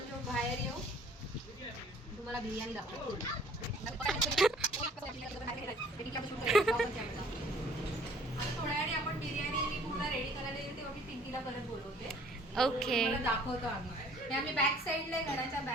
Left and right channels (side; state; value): both; normal; correlation 0.55